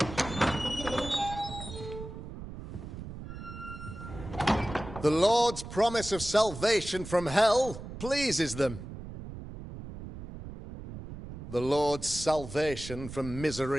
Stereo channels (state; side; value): noise; right; rumble, 11 dB below the sound